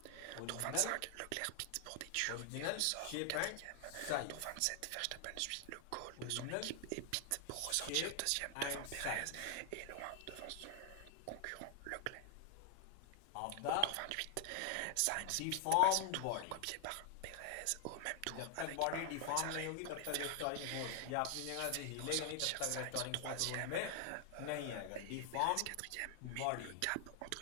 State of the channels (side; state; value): both; different; correlation 0.00